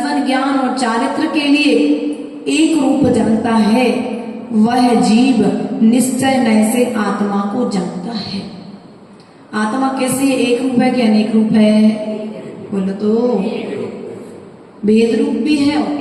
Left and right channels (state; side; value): identical; both; correlation 1.00